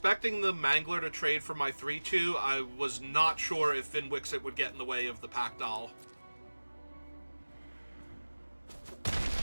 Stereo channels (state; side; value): inverted; both; correlation -1.00